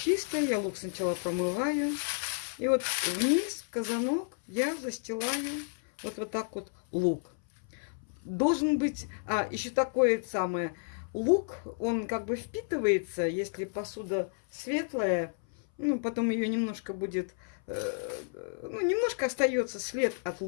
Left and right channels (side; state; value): right; silent; 57 dB below the other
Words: я лук сначала промываю. И вот вниз в казанок я застилаю вот так вот лук. Должен быть, еще такое самое, лук, он как бы впитывается, если посуда светлая, ну, потом ее немножко будет, ну, немножко остается след от